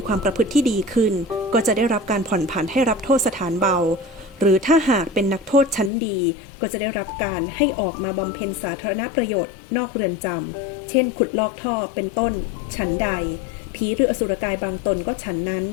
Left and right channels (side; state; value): right; drops out; at 5.9 s